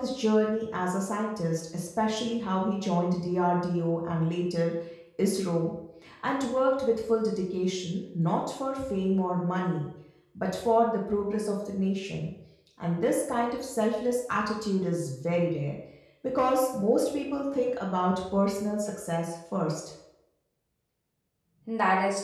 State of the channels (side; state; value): both; identical; correlation 1.00